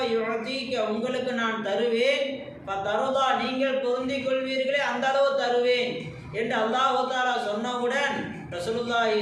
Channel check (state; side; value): identical; both; correlation 1.00